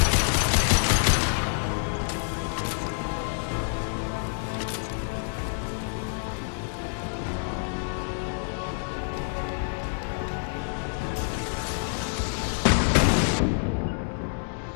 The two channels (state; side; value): silent; right; 60 dB below the other